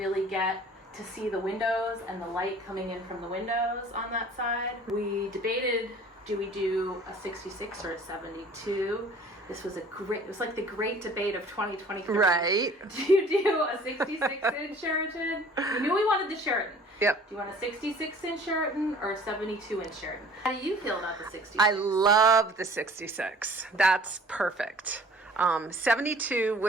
get to see the windows and the light coming in from the windows on that side. We debated, do we do a 66 or a 72? This was it was like the great debate of 2023. Right. Do you do a 66-inch Sheraton? We knew we wanted the Sheraton. Yep. Do you want a 66-inch Sheraton or a 72-inch Sheraton? How do you feel about the 66? I love the 66. That's perfect. 72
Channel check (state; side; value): normal; both; correlation 0.50